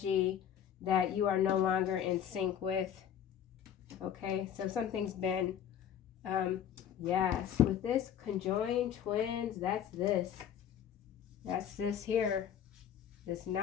that you are no longer in sync with. Okay, so something's been, yes, with this conjoined twins, that's this here, this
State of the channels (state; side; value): quieter; right; 9.4 dB